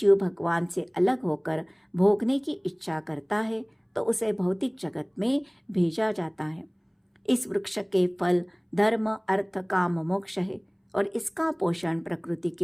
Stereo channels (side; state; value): both; identical; correlation 1.00